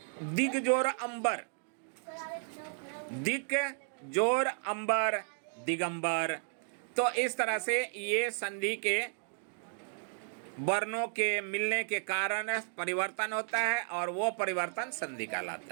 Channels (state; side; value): silent; left; 55 dB below the other